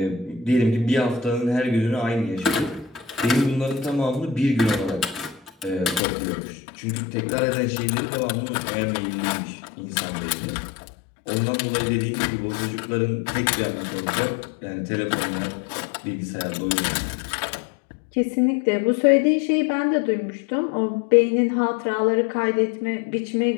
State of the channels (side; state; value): right; drops out; at 6.0 s